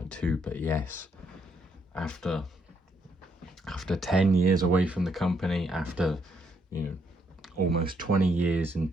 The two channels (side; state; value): both; normal; correlation 0.74